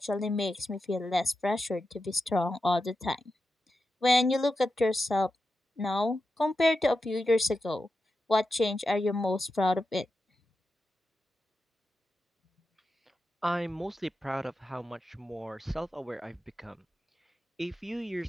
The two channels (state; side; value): normal; both; correlation 0.90